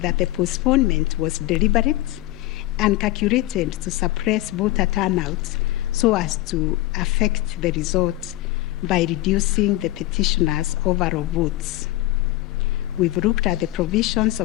the postponement was deliberate and calculated to suppress voter turnout so as to affect the result by reducing the petitioners' overall votes. We've looked at the provisions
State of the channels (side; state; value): right; quieter; 17.1 dB